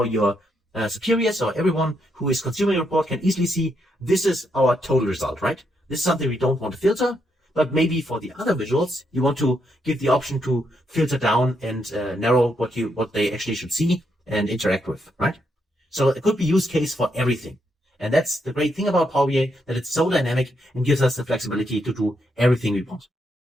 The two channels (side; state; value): both; normal; correlation 0.78